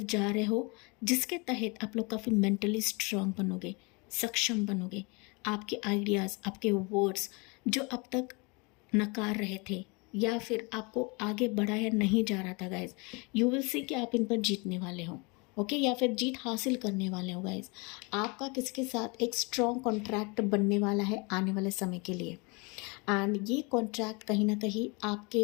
जा रहे हो, जिसके तहत आप लोग काफ़ी मेंटली स्ट्रांग बनोगे, सक्षम बनोगे। आपके आइडियाज़, आपके वर्ड्स जो अब तक नकार रहे थे या फिर आपको आगे बढ़ाया नहीं जा रहा था गाइज, यू विल सी कि आप इन पर जीतने वाले हो, ओके, या फिर जीत हासिल करने वाले हो गाइज। आपका किसी के साथ एक स्ट्रॉन्ग कॉन्ट्रैक्ट बनने वाला है आने वाले समय के लिए एंड ये कॉन्ट्रैक्ट कहीं ना कहीं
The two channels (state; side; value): quieter; right; 29.4 dB